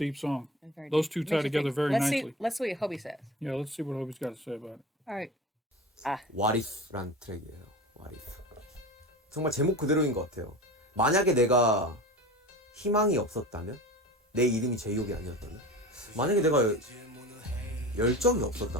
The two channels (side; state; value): both; normal; correlation 0.33